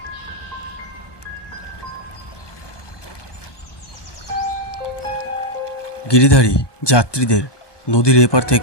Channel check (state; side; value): late; right; 1.2 ms